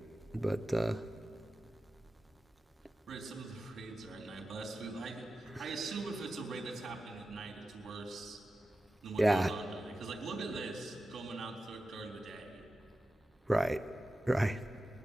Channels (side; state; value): both; normal; correlation 0.93